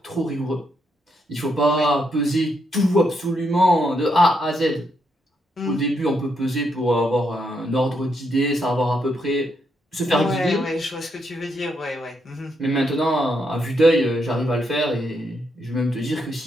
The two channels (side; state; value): both; normal; correlation 0.78